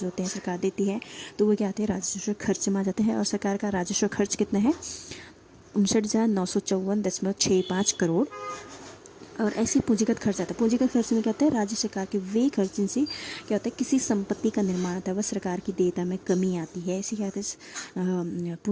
होते हैं सरकार देती है, तो वो क्या आते हैं? राजस्व खर्च में आ जाते हैं। और सरकार का राजस्व खर्च कितना है? 59,954.65 करोड़। और ऐसी पूंजीगत खर्च आता है। पूंजीगत खर्च में क्या होता है? राज्य सरकार के वे खर्च जिनसे क्या होता है, किसी संपत्ति का निर्माण होता है, वह सरकार की देयता में कमी आती है, इसे क्या कहते हैं?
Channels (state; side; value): identical; both; correlation 1.00